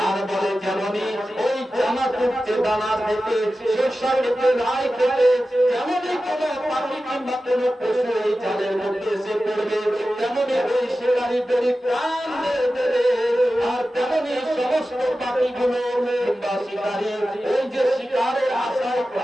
আর বলে যেমনই ওই জামা তুলতে দানা থেকে শস্য খেতে, রাই খেতে, যেমনই কোন পাখি কিংবা কোন পশু এই জালের মধ্যে এসে পড়বে, তেমনই ওই শিকারী বেরি প্রাণ দেবে। আর তেমনই সমস্ত পাখিগুলো কিংবা শিকারী ওই যে শিকারের আশায়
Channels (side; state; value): both; normal; correlation 0.94